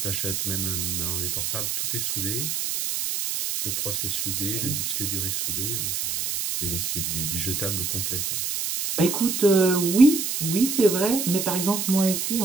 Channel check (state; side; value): noise; right; hiss, 1 dB below the sound